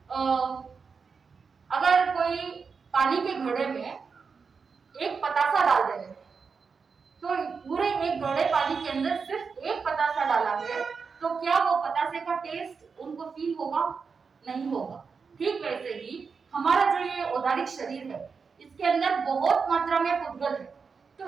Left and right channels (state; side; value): quieter; left; 5.4 dB